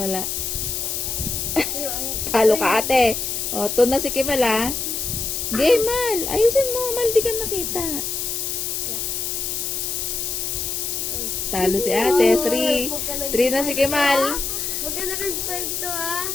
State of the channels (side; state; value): left; noise; hiss, 2 dB below the sound